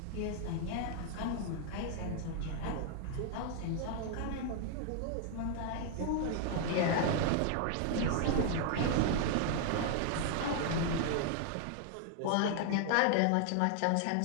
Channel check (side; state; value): both; different; correlation 0.00